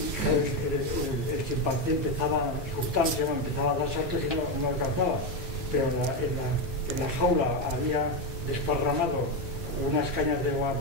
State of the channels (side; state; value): both; normal; correlation 0.10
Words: el chimpancé empezaba a dar saltos y no alcanzaba, pero en la jaula había desparramado unas cañas de